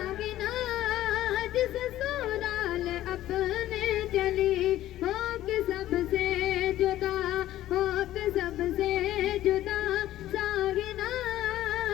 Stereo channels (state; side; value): quieter; right; 13.9 dB